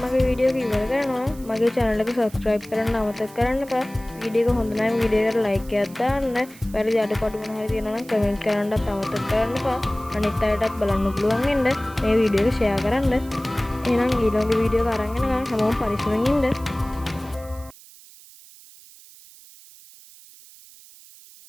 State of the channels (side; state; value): right; noise; hiss, 22 dB below the sound